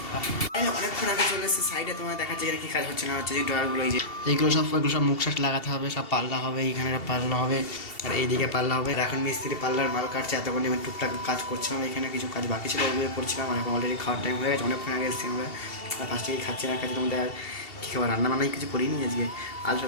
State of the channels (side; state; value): right; late; 2.7 ms